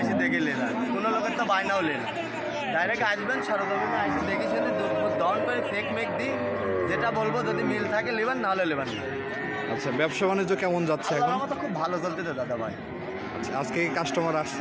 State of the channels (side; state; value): both; identical; correlation 1.00